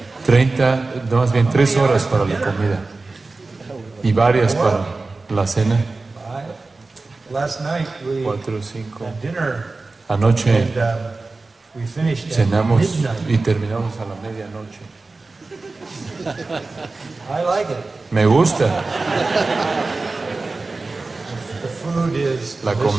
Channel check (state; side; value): quieter; left; 3.6 dB